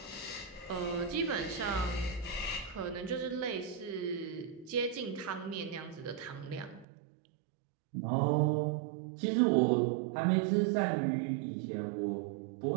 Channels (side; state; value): left; drops out; at 6.9 s